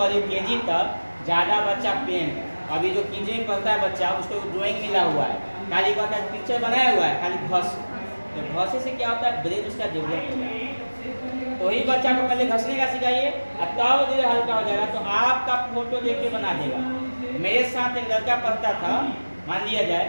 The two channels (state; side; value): inverted; both; correlation -1.00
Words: केजी तक ज़्यादा बच्चा पेन, अभी जो केजी में पढ़ता है बच्चा उसको ड्राइंग मिला हुआ है, खाली का पिक्चर बनाया हुआ है, खाली घस। तो घसे से क्या होता है, ब्रेन उसका डेवलप होगा। तो वही बच्चा को पहले घसने का सिखाइए, तब धीरे हल्का हो जाएगा। तो आपका फोटो देख के बना देगा। मेरे साथ एक लड़का पढ़ता था, मान लिया जाए